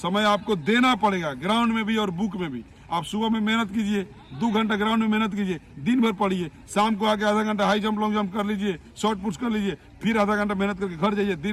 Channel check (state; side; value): identical; both; correlation 1.00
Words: आपको देना पड़ेगा, ग्राउंड में भी और बुक में भी। आप सुबह में मेहनत कीजिए, 2 घंटा ग्राउंड में मेहनत कीजिए, दिन भर पढ़िए, शाम को आके आधा घंटा हाई जंप लॉन्ग जंप कर लीजिए, शॉर्ट पुश कर लीजिए, फिर आधा घंटा मेहनत करके घर जाइए,